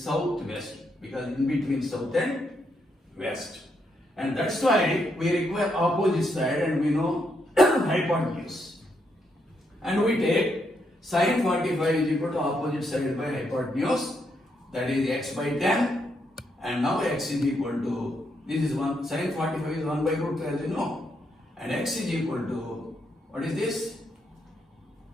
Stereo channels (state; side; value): normal; both; correlation 0.78